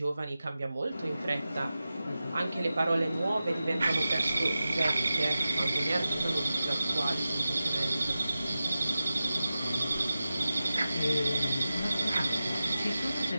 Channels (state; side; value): inverted; both; correlation -0.94